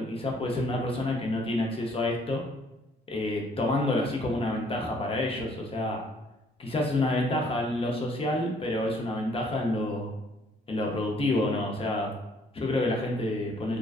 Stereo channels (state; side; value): normal; both; correlation 0.62